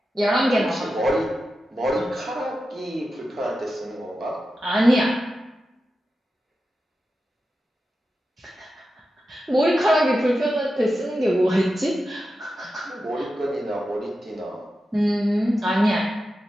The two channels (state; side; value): normal; both; correlation 0.91